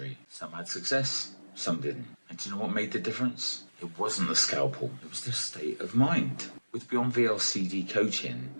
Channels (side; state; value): both; inverted; correlation -1.00